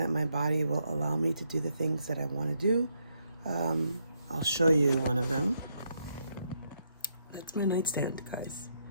my body will allow me to do the things that I want to do. I'll show you one of them. That's my nightstand, guys.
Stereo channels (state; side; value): inverted; both; correlation -0.77